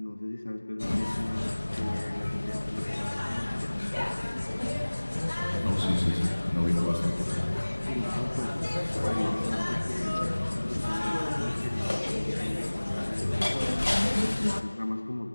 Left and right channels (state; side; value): inverted; both; correlation -1.00